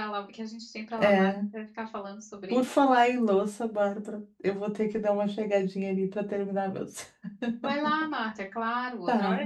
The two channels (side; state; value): both; identical; correlation 1.00